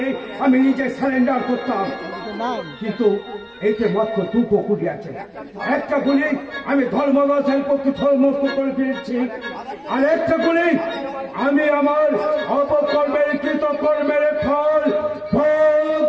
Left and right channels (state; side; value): identical; both; correlation 1.00